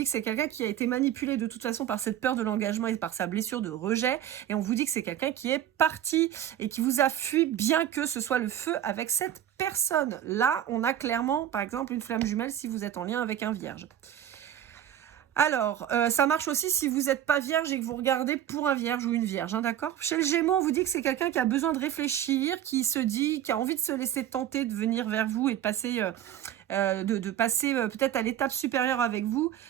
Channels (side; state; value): left; quieter; 10.9 dB